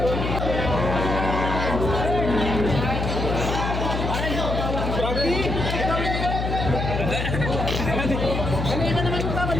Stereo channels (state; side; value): noise; left; hum, 2 dB below the sound